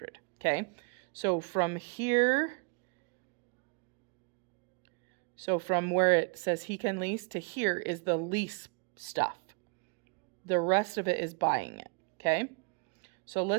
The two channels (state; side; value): quieter; left; 36.7 dB